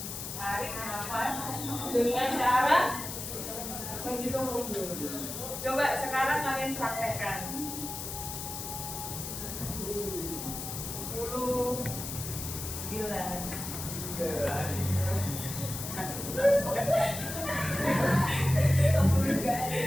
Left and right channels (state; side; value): noise; left; hiss, 7 dB below the sound